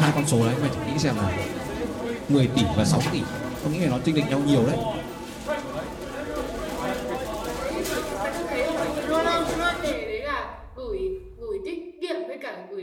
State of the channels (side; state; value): both; identical; correlation 1.00